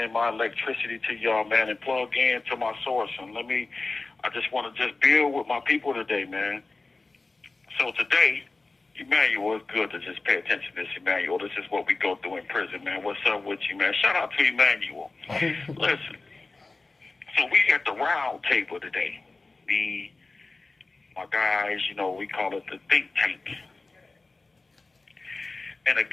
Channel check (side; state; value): right; quieter; 3.5 dB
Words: my electricity to y'all, man, and plug in to my source. And I just want to just build with my people today, man. So today, Emmanuel, it's good to just pay attention to this, Emmanuel. This is what we go through in prison, man. What's up with you, man? Shout out to Emmanuel. Listen, so we at the round table today. My guys, we call it the think tank. And a